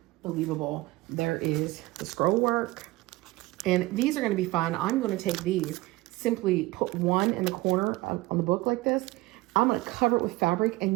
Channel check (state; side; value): quieter; left; 20.2 dB